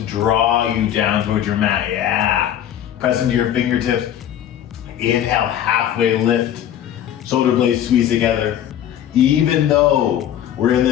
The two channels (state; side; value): quieter; right; 10.8 dB